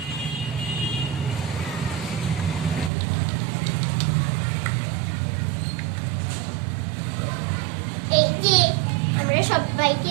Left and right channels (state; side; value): drops out; left; at 2.9 s